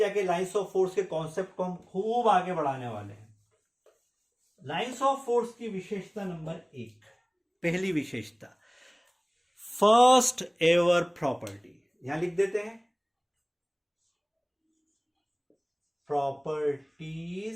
लाइंस ऑफ फोर्स के कॉन्सेप्ट को हम खूब आगे बढ़ाने वाले हैं। लाइंस ऑफ फोर्स की विशेषता नंबर 1, पहली विशेषता, फर्स्ट एवर प्रॉपर्टी, यहां लिख देते हैं,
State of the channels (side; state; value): both; identical; correlation 1.00